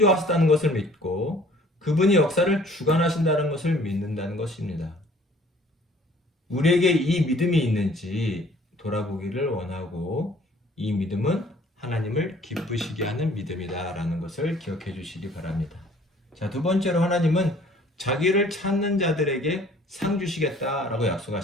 것을 믿고, 그분이 역사를 주관하신다는 것을 믿는다는 것입니다. 우리에게 이 믿음이 있는지 돌아보기를 원하고, 이 믿음은 하나님을 기쁘시게 하는 믿음이다라는 것을 기억해 주시기 바랍니다. 자, 두 번째로 하나님은 자기를 찾는 자들에게 상 주시겠다라고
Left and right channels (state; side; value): normal; both; correlation 0.54